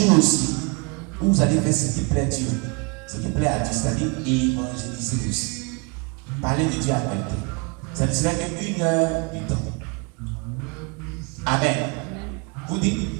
aussi, où vous allez faire ce qui plaît à Dieu. Ce qui plaît à Dieu, c'est-à-dire évangéliser aussi. Parler de Dieu à quelqu'un. Ça ne serait qu'une heure du temps. Amen. Vous dites,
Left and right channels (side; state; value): left; quieter; 31.4 dB